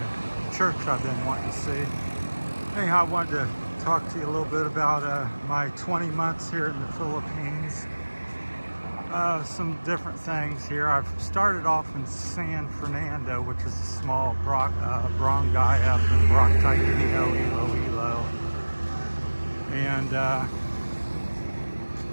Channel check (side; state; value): both; inverted; correlation -1.00